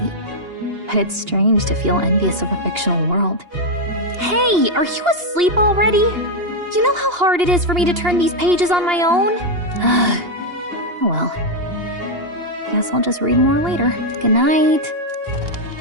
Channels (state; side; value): late; left; 2.8 ms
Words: But it's strange to feel envious of a fictional world. Hey, are you asleep already? You know how hard it is for me to turn these pages on my own? Oh well. Guess I'll just read more later. Good night.